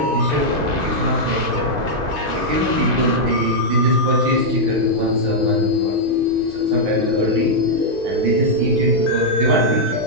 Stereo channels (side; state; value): left; late; 2.5 ms